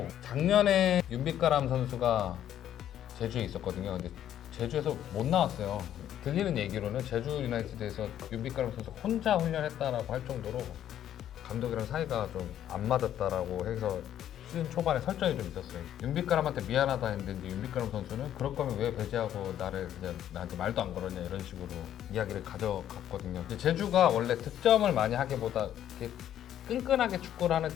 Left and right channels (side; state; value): right; quieter; 11.0 dB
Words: 작년에 윤빛가람 선수가 제주에 있었거든요. 근데 제주에서 못 나왔어요. 들리는 얘기로는 제주 유나이티드에서 윤빛가람 선수 혼자 훈련했다라고 할 정도로 감독이랑 사이가 좀 안 맞았다라고 해서 시즌 초반에 설전이 좀 있었어요. 윤빛가람한테 미안하다 했는데 이제 윤빛가람 선수는 그럴 거면 왜 배제하고 나를 그냥 나한테 말도 안 걸었냐 이런 식으로 이야기를 가져갔거든요. 이제 제주가 원래 득점을 많이 하기보다 이렇게 끈끈하게 축구를 하는